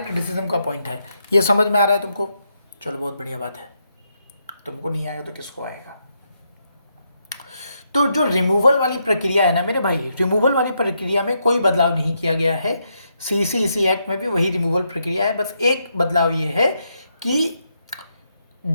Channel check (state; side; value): inverted; both; correlation -0.80